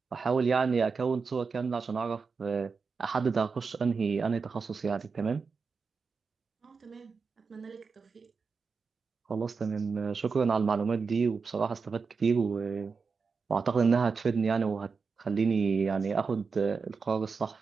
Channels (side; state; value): left; quieter; 5.0 dB